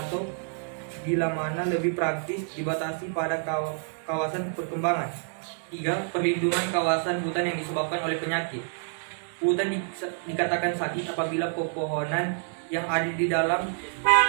bila mana lebih praktis dibatasi pada kawasan perkembangan. 3. Perlindungan kawasan hutan yang disebabkan oleh penyakit. Hutan dikatakan sakit apabila pepohonan yang ada di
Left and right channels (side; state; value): left; silent; 60 dB below the other